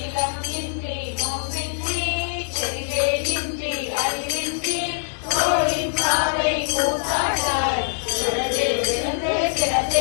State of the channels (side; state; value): right; silent; digital silence